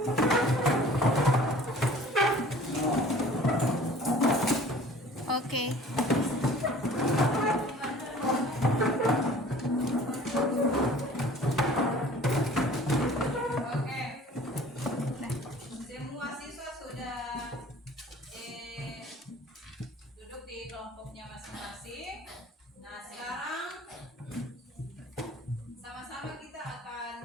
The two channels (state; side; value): normal; both; correlation 0.48